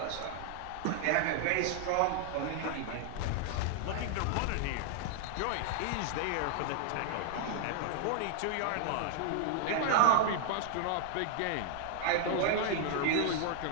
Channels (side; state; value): both; different; correlation 0.00